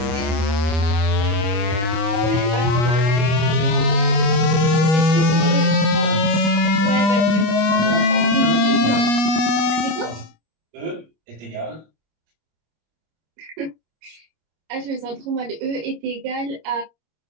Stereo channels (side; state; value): left; late; 25 ms